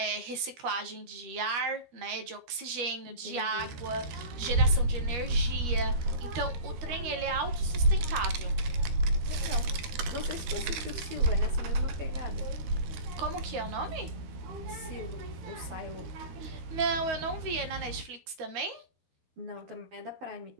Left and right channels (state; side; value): late; left; 12 ms